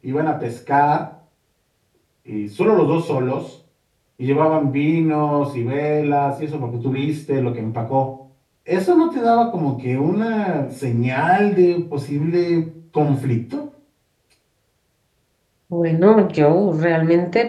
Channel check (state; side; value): identical; both; correlation 1.00